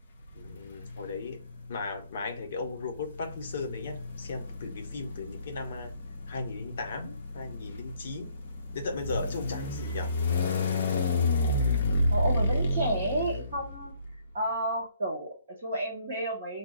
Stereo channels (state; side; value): inverted; both; correlation -0.65